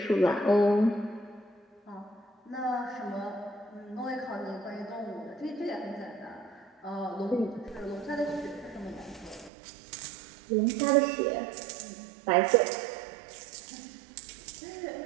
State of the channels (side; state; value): left; drops out; at 9.5 s